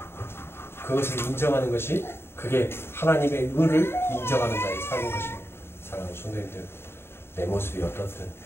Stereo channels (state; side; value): late; right; 0.11 ms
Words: 그것을 인정하는 것이 그게 하나님의 의를 인정하는 자의 삶인 것입니다. 사랑하는 성도님들, 내 모습이 어떻든